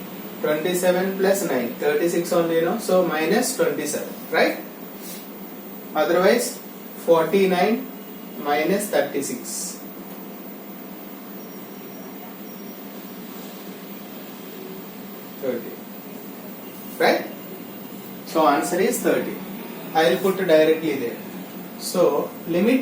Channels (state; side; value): identical; both; correlation 1.00